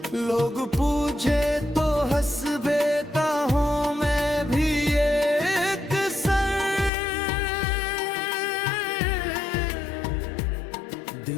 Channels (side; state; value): right; drops out; at 6.9 s